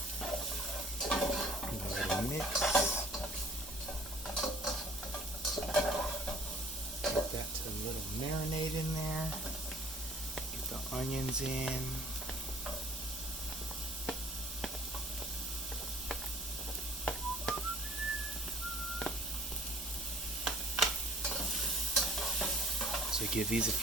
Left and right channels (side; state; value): both; normal; correlation 0.51